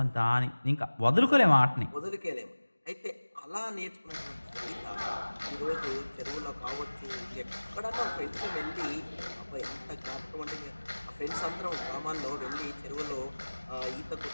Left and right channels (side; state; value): both; inverted; correlation -1.00